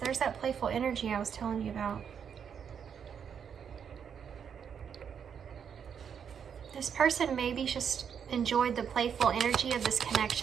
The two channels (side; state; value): left; quieter; 7.6 dB